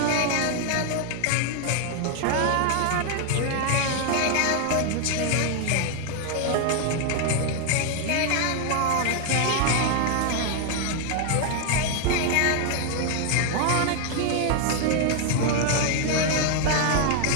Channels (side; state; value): both; different; correlation 0.00